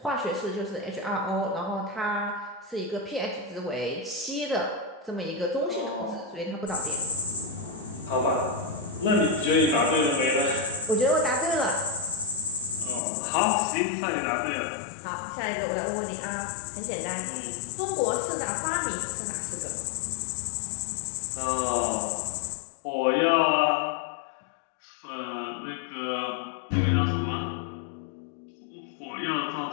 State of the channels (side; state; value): right; drops out; at 13.0 s